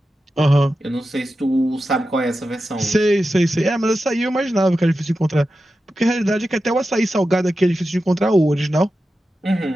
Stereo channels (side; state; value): both; normal; correlation 0.91